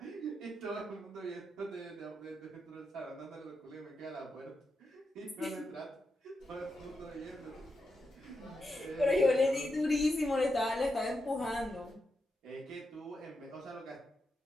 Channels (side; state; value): both; normal; correlation 0.86